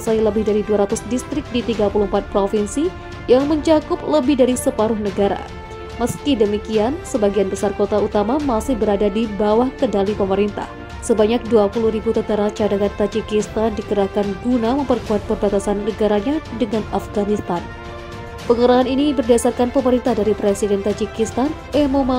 lebih dari 200 distrik di 34 provinsi yang mencakup lebih dari separuh negara. Meski demikian, sebagian besar kota utama masih berada di bawah kendali pemerintah. Sebanyak 20.000 tentara cadangan Tajikistan dikerahkan guna memperkuat perbatasan negaranya dengan Afghanistan. Pengerahan ini berdasarkan pemerintah dari Presiden Tajikistan,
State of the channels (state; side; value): identical; both; correlation 1.00